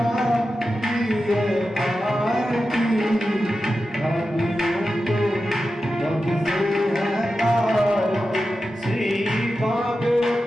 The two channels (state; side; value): normal; both; correlation 0.91